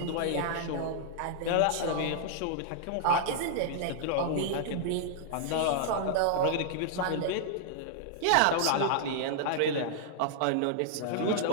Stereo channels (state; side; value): different; both; correlation -0.01